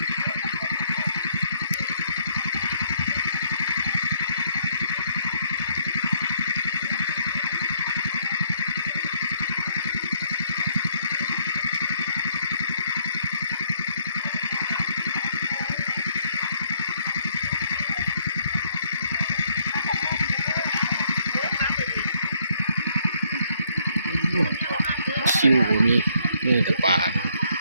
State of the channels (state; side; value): inverted; both; correlation -0.69